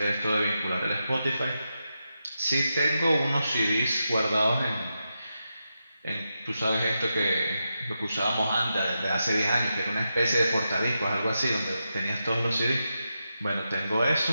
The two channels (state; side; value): inverted; both; correlation -0.88